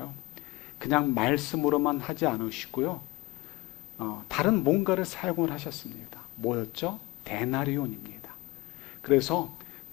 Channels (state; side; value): quieter; right; 20.3 dB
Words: 그냥 말씀으로만 하지 않으시고요. 다른 뭔가를 사용을 하셨습니다. 뭐였죠? 데나리온입니다. 그래서